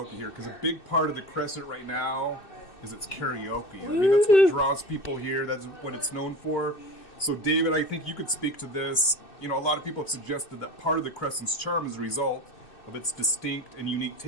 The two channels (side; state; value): right; late; 2.6 ms